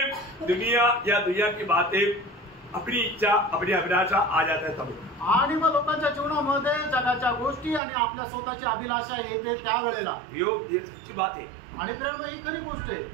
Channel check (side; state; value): left; drops out; at 7.8 s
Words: दुनिया या दुनिया की बातें, अपनी इच्छा, अपनी अभिलाषा आ जाता है तब। आणि मग लोकांच्या जीवनामध्ये जगाच्या गोष्टी आणि आपल्या स्वतःची अभिलाषा येते त्यावेळेला। ये सच्ची बात है। आणि प्रेम ही खरी गोष्ट आहे।